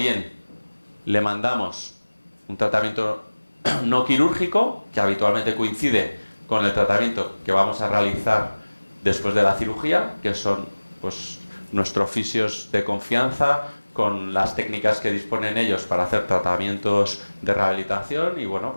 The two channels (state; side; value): inverted; both; correlation -1.00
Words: le mandamos un tratamiento no quirúrgico, que habitualmente coincide con el tratamiento que vamos a realizar después de la cirugía, que son pues nuestros fisios de confianza, con las técnicas que disponen ellos para hacer tratamientos de rehabilitación, y bueno,